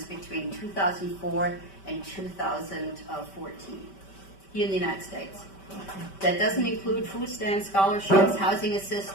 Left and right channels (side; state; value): right; late; 5.2 ms